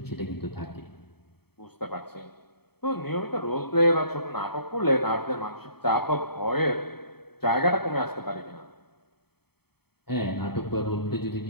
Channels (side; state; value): right; late; 0.96 ms